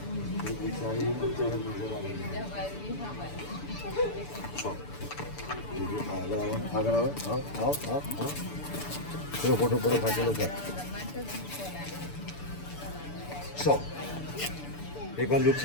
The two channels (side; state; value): right; late; 6.9 ms